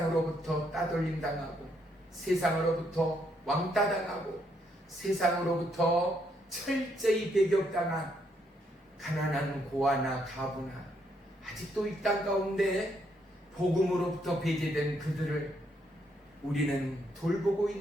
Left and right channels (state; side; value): normal; both; correlation 0.74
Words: 따돌림 당하고 세상으로부터 왕따 당하고 세상으로부터 철저히 배격당한 가난한 고아나 가부나 아직도 이 땅 가운데 복음으로부터 배제된 그들을 우리는 돌보고